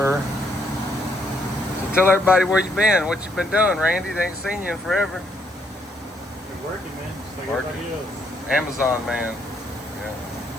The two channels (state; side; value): normal; both; correlation 0.72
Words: So tell everybody where you been, what you been doing, Randy. They ain't seen you in forever. Been working, man, just like Working. everybody else. Amazon man. Yeah.